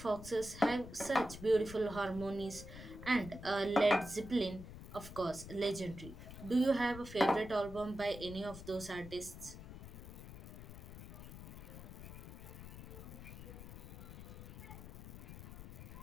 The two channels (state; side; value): noise; left; rumble, 12 dB below the sound